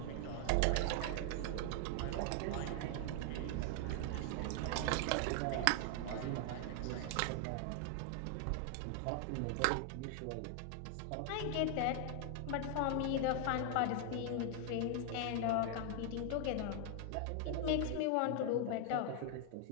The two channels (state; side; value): different; both; correlation 0.00